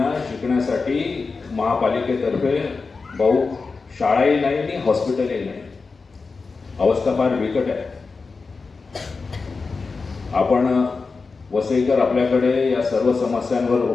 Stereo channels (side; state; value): right; quieter; 4.4 dB